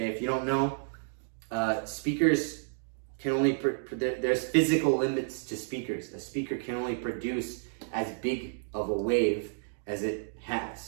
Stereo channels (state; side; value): silent; left; digital silence